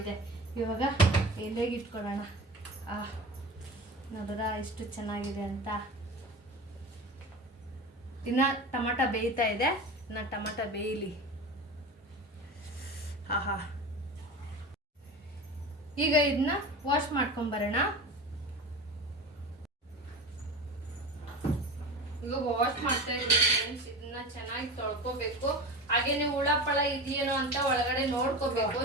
ಇವಾಗ ಎಲೆಗೆ ಇಟ್ಕೊಳ್ಳೋಣ. ನೋಡಿದ್ರಾ ಎಷ್ಟು ಚೆನ್ನಾಗಿದೆ ಅಂತ. ಇನ್ನು ಟೊಮಾಟ ಬೇಯ್ತಾ ಇದೆ. ಇನ್ನು ಟೊಮಾಟ ಬೇಯಲಿ. ಈಗ ಇದನ್ನ ವಾಶ್ ಮಾಡ್ಕೊಂಬರೋಣ. ಈಗ ವಾಶ್ ಮಾಡ್ತಾ ಇದ್ದೀವಿ ಫ್ರೆಂಡ್ಸ್. ಇದನ್ನ ಚೆನ್ನಾಗಿ ತೊಳ್ಕೊಬೇಕು. ಹಾಗೇನೆ ಹುಳಪಳ ಇದೆಯೇನೋ ಅಂತ ಒಳಗಡೆ ನೋಡ್ಕೋಬೇಕು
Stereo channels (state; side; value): normal; both; correlation 0.31